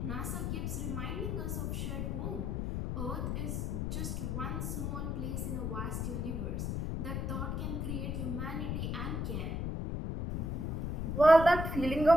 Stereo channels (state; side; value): noise; left; rumble, 1 dB below the sound